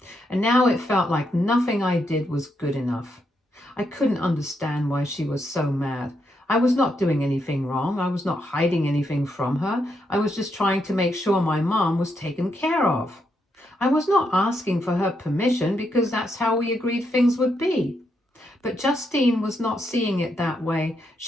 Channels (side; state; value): both; normal; correlation 0.80